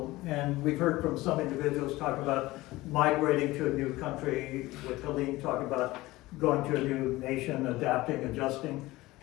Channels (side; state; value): right; quieter; 18.9 dB